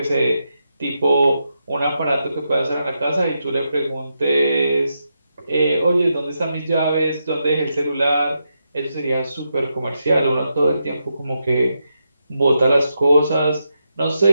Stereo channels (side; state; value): both; inverted; correlation -0.85